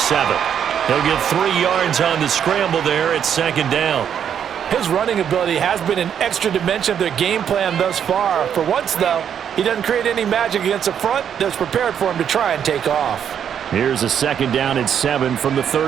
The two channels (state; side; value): quieter; left; 8.6 dB